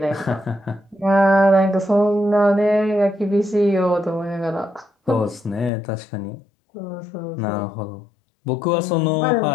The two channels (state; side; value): drops out; right; at 5.7 s